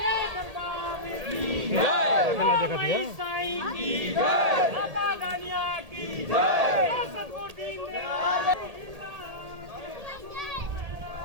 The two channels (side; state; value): left; late; 1.8 ms